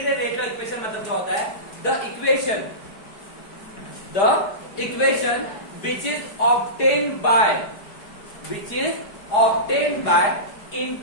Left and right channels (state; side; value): late; right; 4.8 ms